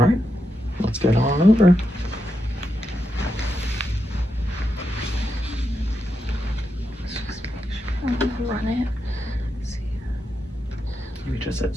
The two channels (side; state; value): both; normal; correlation 0.85